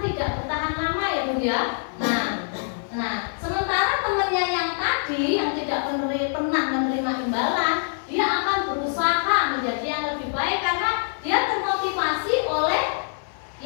bertahan lama ya Bu ya. Nah, sementara temannya yang tadi yang tidak pernah menerima imbalan, dia akan berusaha menjadi yang lebih baik karena dia termotivasi oleh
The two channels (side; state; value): right; silent; 62 dB below the other